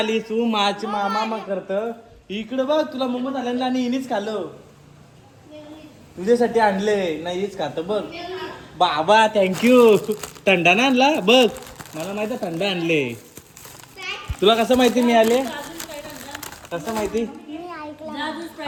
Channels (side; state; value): both; identical; correlation 1.00